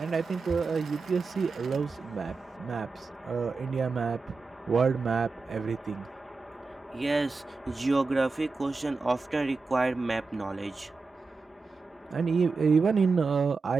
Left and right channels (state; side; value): quieter; left; 4.2 dB